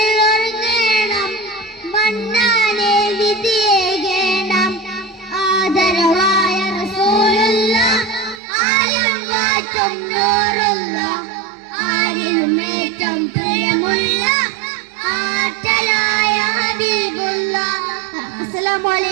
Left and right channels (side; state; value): left; drops out; at 8.4 s